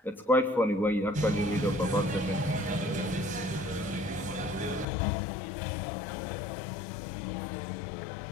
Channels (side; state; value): right; drops out; at 4.9 s